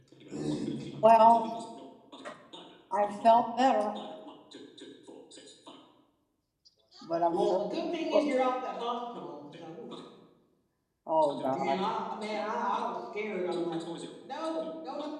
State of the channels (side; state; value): both; identical; correlation 1.00